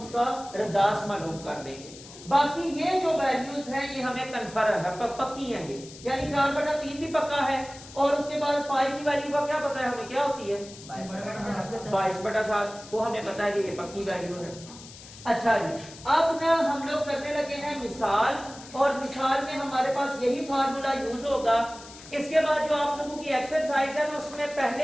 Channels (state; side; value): noise; left; hiss, 17 dB below the sound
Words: रद्दास मालूम कर देंगे। बाकी ये जो वैल्यूज हैं ये हमें कन्फर्म है, पक्की हैं ये, यानी 4/3 भी पक्का है। और उसके बाद पाई की वैल्यू का क्या पता है हमें, क्या होती है 22/7, वो हमें पता है कि ये पक्की वैल्यू है। अच्छा जी, अब ना हम लोग करने लगे हैं मिसाल, और मिसाल में हमारे पास यही फार्मूला यूज होगा। इसके बाद जो आप लोगों की एक्सरसाइज है ना, उसमें